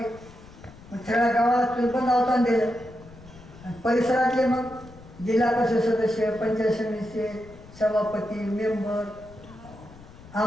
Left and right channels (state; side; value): noise; left; rumble, 20 dB below the sound